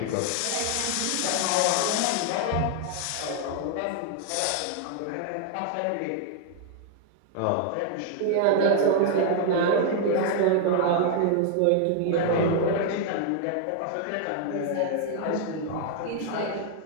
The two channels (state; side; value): different; both; correlation 0.00